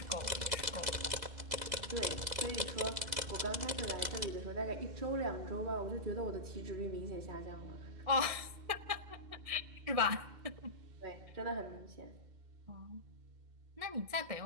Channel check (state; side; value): late; left; 2.0 ms